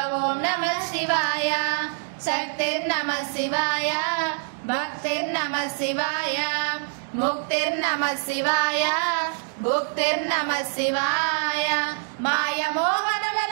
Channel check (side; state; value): left; silent; digital silence